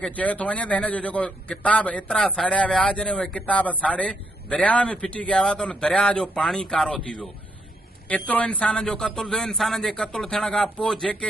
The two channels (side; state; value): both; normal; correlation 0.75